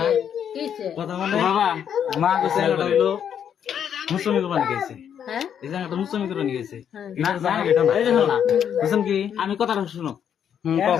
কিছে কথা বলে বাবা মা কাছে হলো মুসলমান কোরবানি গেছে হ্যাঁ এই জায়গাটা মুসলমান কোরবানি গেছে না জানা এটা না এই দেখো না বুঝছেন কি আমি কথাটা শুনো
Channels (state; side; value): quieter; right; 8.6 dB